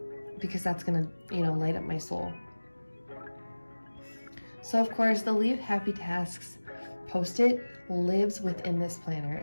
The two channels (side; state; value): both; inverted; correlation -1.00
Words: because that's going to, light up my soul. So of course, the Leave Happy Tasks post-it lives within this planner.